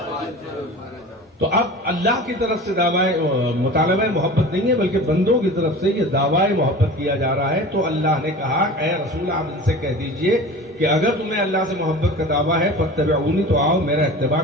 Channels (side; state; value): both; normal; correlation 0.37